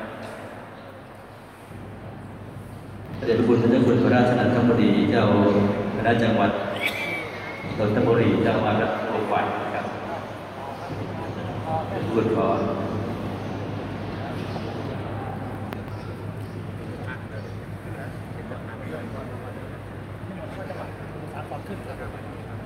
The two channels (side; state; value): both; identical; correlation 1.00